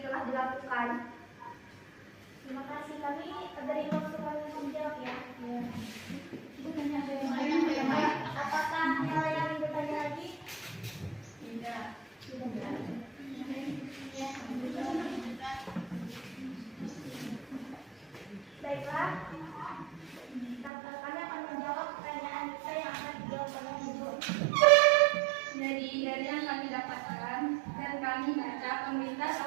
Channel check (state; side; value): drops out; left; at 20.7 s